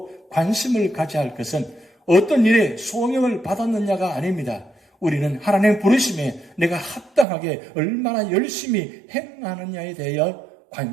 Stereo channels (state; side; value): drops out; left; at 7.2 s